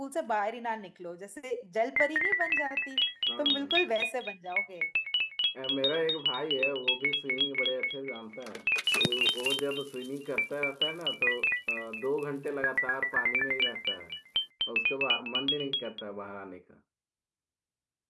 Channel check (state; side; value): identical; both; correlation 1.00